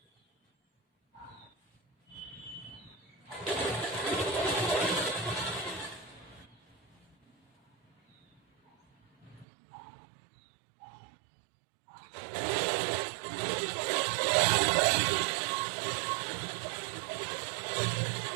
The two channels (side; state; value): left; drops out; at 9.5 s